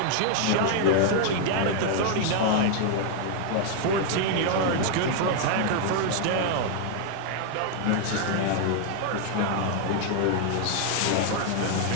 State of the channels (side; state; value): both; different; correlation 0.00